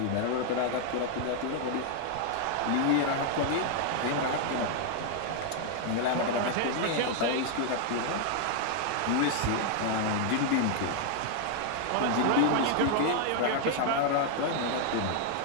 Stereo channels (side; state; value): both; different; correlation 0.00